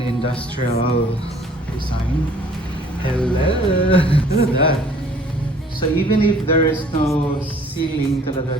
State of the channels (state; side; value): normal; both; correlation 0.56